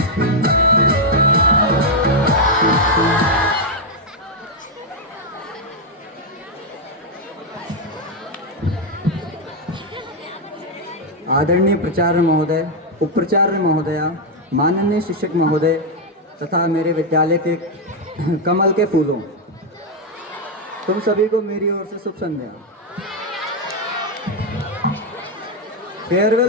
आदरणीय प्राचार्य महोदय, उपप्राचार्य महोदया, माननीय शिक्षक महोदय तथा मेरे विद्यालय के कमल के फूलों, तुम सभी को मेरी ओर से शुभ संध्या।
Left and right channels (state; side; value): normal; both; correlation 0.01